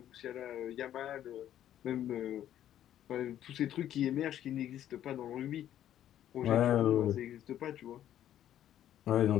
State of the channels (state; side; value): quieter; right; 11.4 dB